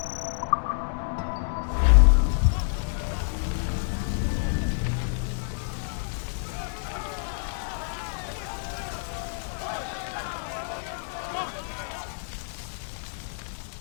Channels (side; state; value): right; silent; digital silence